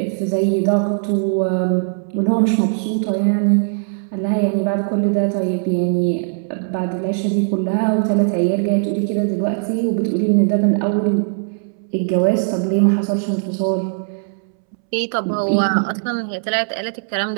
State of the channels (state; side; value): silent; left; 66 dB below the other